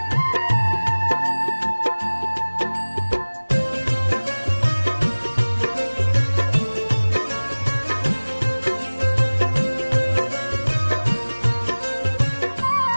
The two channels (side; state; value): both; inverted; correlation -1.00